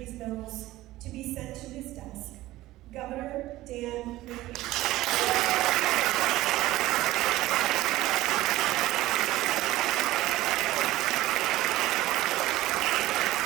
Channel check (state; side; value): quieter; left; 16.7 dB